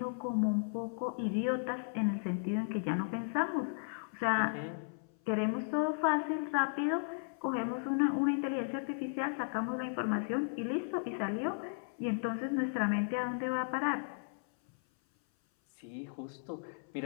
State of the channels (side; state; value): right; silent; 54 dB below the other